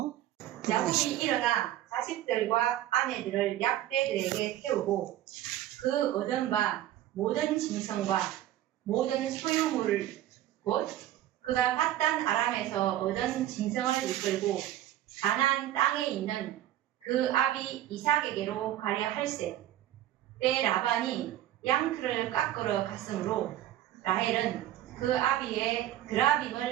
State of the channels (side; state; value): left; quieter; 13.1 dB